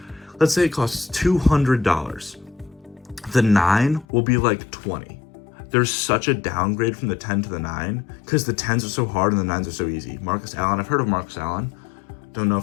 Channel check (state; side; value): drops out; right; at 4.0 s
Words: Let's say it costs $200. The 9 will be like 20. There's such a downgrade from the 10 to the 9 because the 10s are so hard and the 9s are so easy. Marcus Allen, I've heard of Marcus Allen. Don't know